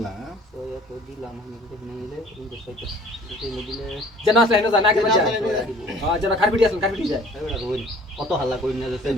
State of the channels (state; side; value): normal; both; correlation 0.52